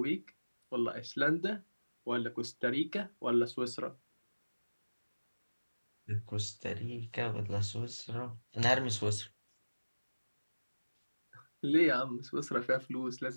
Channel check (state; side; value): inverted; both; correlation -1.00